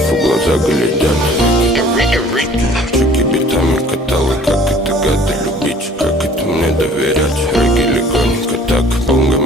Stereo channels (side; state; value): both; normal; correlation 0.52